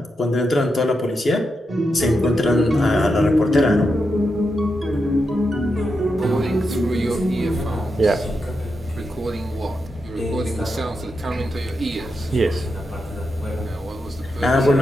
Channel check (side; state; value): both; normal; correlation 0.86